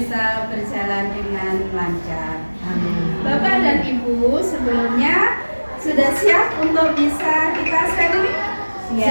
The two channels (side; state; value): both; inverted; correlation -1.00